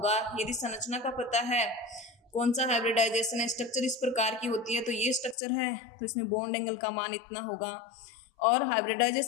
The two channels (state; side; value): drops out; right; at 5.4 s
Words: यदि संरचना का पता है, कौन सा हाइब्रिडाइजेशन है, स्ट्रक्चर इस प्रकार की होती है तो ये स्ट्रक्चर है, तो इसमें बॉन्ड एंगल का मान इतना होगा। और